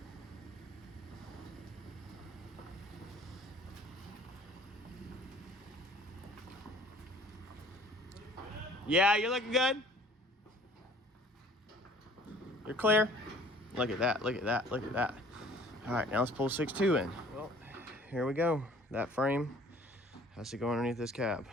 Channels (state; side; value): normal; both; correlation 0.53